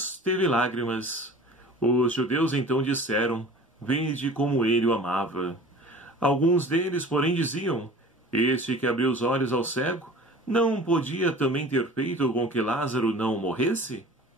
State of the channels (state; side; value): normal; both; correlation 0.43